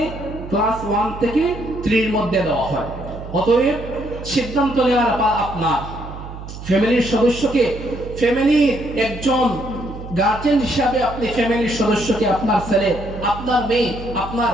ক্লাস 1 থেকে 3 এর মধ্যে দেওয়া হয়। অতএব সিদ্ধান্ত নেওয়ার আপনার ফ্যামিলির সদস্যকে, ফ্যামিলির একজন গার্জেন হিসাবে আপনি ফ্যামিলির সদস্যকে, আপনার ছেলে, আপনার মেয়ে, আপনার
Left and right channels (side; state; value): right; noise; hum, 12 dB below the sound